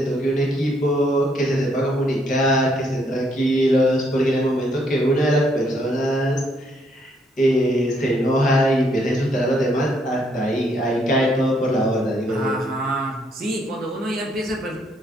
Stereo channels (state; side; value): normal; both; correlation 0.71